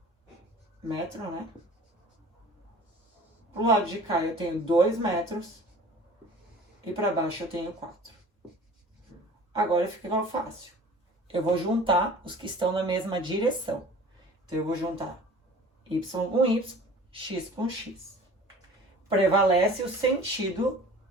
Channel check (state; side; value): normal; both; correlation 0.45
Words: metro, né? Pro lado de cá eu tenho 2 metros. E para baixo eu tenho 4. Agora fica fácil. Eu vou juntar os que estão na mesma direção. Então, eu vou juntar y com y, x com x. Prevalece o sentido